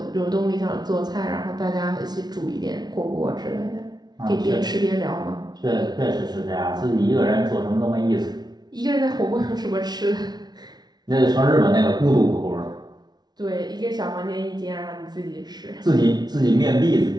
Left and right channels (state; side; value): late; left; 0.19 ms